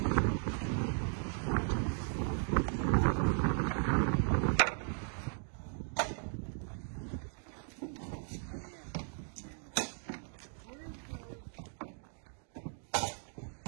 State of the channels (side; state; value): left; silent; 53 dB below the other